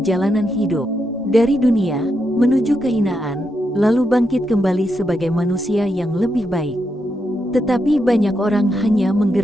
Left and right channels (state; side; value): normal; both; correlation 0.83